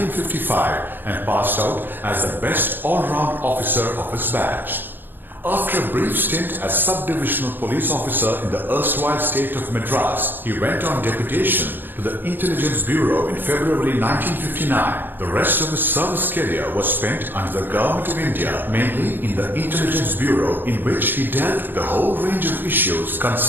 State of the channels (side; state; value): left; late; 0.094 ms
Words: and passed out as the best all-round officer of his batch. After a brief stint as sub-divisional police officer in the erstwhile state of Madras, he went on deputation to the Intelligence Bureau in February 1959. The rest of his service career was spent under the Government of India, mainly in the Intelligence Bureau, in which he dealt with a whole range of issues